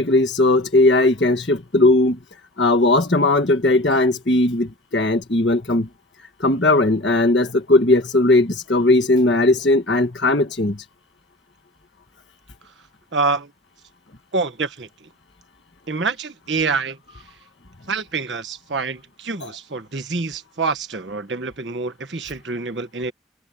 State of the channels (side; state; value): both; normal; correlation 0.36